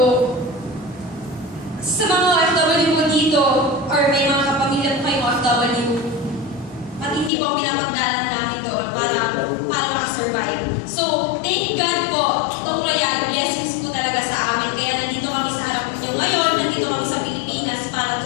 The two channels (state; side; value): drops out; right; at 7.3 s